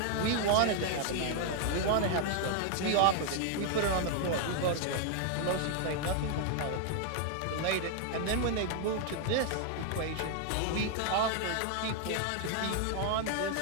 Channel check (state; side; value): different; both; correlation 0.00